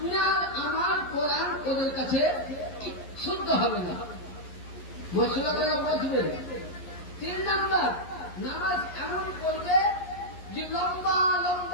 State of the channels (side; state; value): right; late; 11 ms